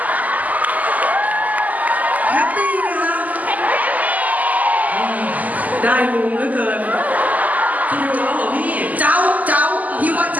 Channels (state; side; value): late; left; 0.078 ms